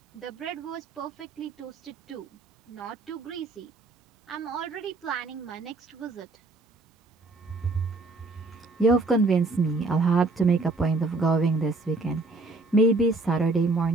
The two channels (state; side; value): quieter; left; 3.4 dB